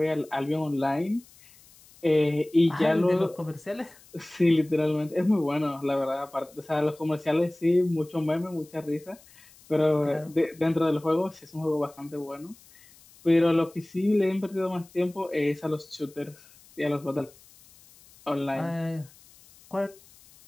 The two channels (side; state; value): left; noise; hiss, 26 dB below the sound